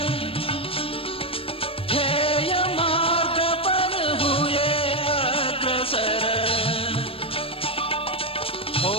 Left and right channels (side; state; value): right; late; 0.27 ms